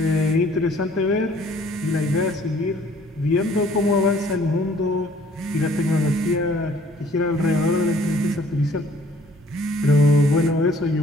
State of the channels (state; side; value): normal; both; correlation 0.58